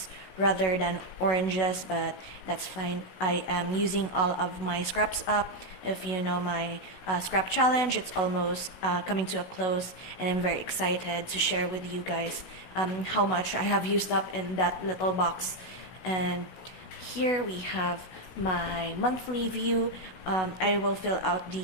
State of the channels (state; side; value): late; right; 16 ms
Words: rather than oranges, but that's fine. I am using all of my scraps up. If you know my scrap challenge, it's almost coming to a close, and I'm very excited to share with you guys how much I have used up in that little box. And here we have my monthly view. I will fill out